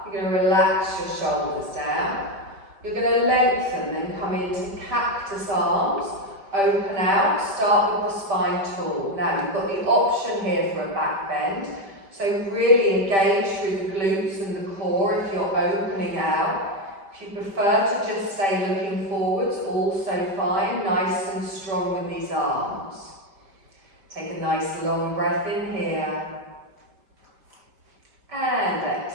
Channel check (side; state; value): left; late; 5.1 ms